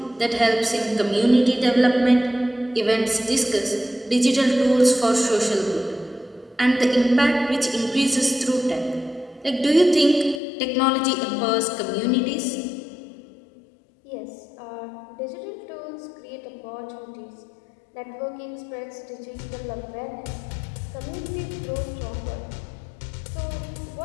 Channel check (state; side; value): drops out; right; at 10.4 s